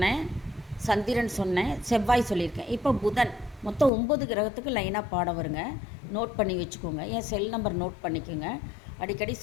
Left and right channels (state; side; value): drops out; right; at 3.9 s